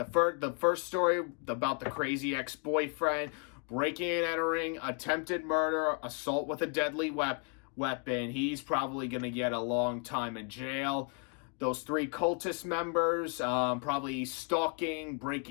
first story about the crazy ex-boyfriend, breaking and entering, attempted murder, assault with a deadly weapon. He's probably going to get a long time in jail. Those 3 cultist members, probably stalking,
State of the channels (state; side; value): quieter; right; 36.7 dB